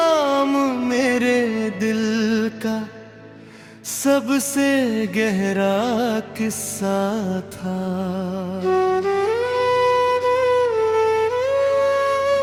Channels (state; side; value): identical; both; correlation 1.00